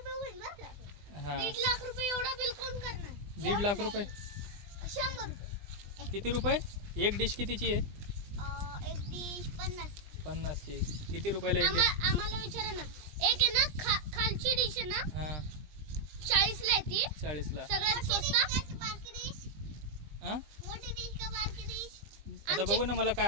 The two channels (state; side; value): late; left; 20 ms